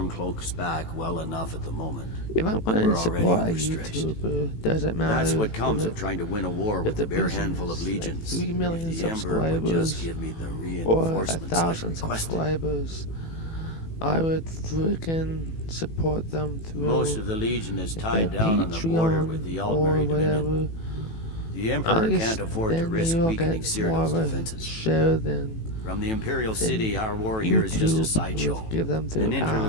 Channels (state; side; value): late; right; 18 ms